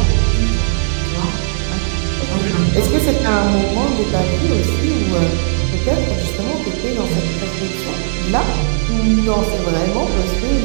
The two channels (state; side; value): silent; left; 67 dB below the other